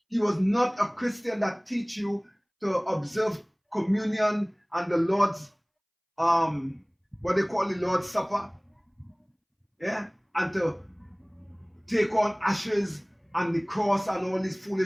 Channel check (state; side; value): identical; both; correlation 1.00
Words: He was not a Christian that teach you to observe communion and the Lord's, what they call the Lord's Supper, yeah, and to take on ashes and the cross and all this